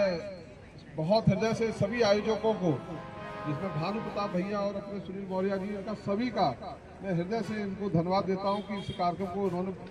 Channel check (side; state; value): both; identical; correlation 1.00